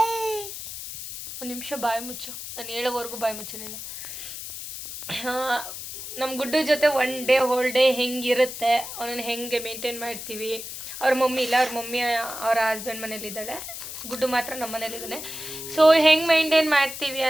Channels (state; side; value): noise; left; hiss, 9 dB below the sound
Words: ಒಂದು ನಿಮಿಷ ಬಾಯಿ ಮುಚ್ಚು, ನಾನು ಹೇಳೋವರೆಗೂ ಬಾಯಿ ಮುಚ್ಚು ನೀನು. ನಮ್ಮ ಗುಡ್ಡು ಜೊತೆ ಹೋಲ್ ಡೇ ಹೆಂಗಿರುತ್ತೆ, ಅವನನ್ನು ಹೆಂಗೆ ಮೇಂಟೈನ್ ಮಾಡ್ತೀವಿ. ಅವ್ರ ಮಮ್ಮಿ ಇಲ್ಲ, ಅವ್ರ ಮಮ್ಮಿ ಅವರ ಹಸ್ಬೆಂಡ್ ಮನೇಲಿದ್ದಾಳೆ, ಗುಡ್ಡು ಮಾತ್ರ ನಮ್ಮ ಮನೇಲಿದ್ದಾನೆ. ಸೊ ಹೆಂಗೆ ಮೇಂಟೈನ್ ಮಾಡ್ತೀವಿ